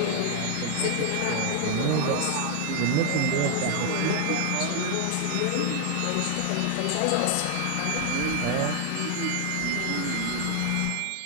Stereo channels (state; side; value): different; both; correlation 0.00